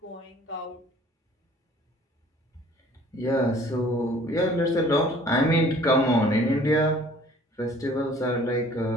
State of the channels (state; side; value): normal; both; correlation 0.53